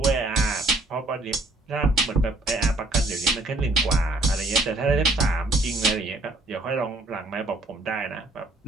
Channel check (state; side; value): normal; both; correlation 0.63